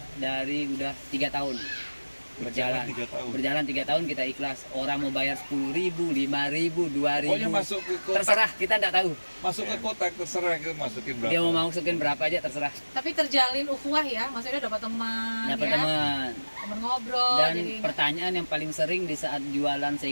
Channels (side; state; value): both; inverted; correlation -1.00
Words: dari udah 3 tahun berjalan. 3 tahun. Berjalan 3 tahun kita ikhlas. Orang mau bayar 10.000, 5.000, 2.000. Pokoknya masuk ke kotak, Terserah, kita tidak tahu. masuk ke kotak terserah kita masukin berapa. Dia mau masukin berapa aja terserah. Tapi terjalin ukhuwah ya, maksudnya dapat teman, Dapat ya? teman. Teman ngobrol. Dan jadi pertanyaan yang paling sering di saat jualan